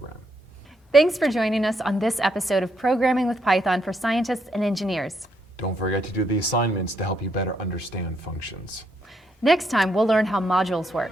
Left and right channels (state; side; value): normal; both; correlation 0.76